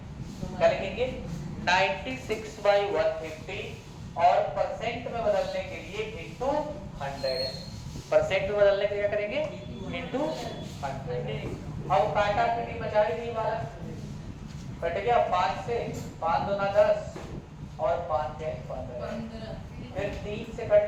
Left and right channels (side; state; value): both; identical; correlation 1.00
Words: क्या लिखेंगे? 96 by 150 और परसेंट में बदलने के लिए इंटू 100। परसेंट में बदलने के लिए क्या करेंगे? इंटू 100। अब काटा पीटी मचाई नहीं वाला, कट गया 5 से, 5 दूना 10 और 5 है 15। फिर 3 से कट